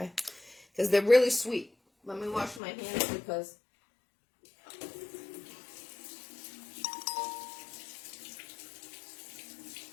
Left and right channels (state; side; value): drops out; right; at 2.6 s